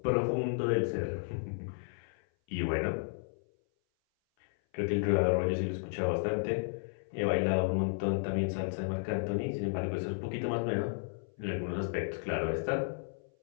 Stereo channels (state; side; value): silent; right; 56 dB below the other